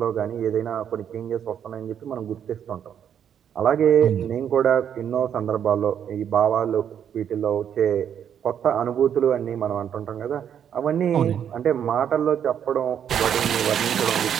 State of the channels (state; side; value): quieter; left; 8.8 dB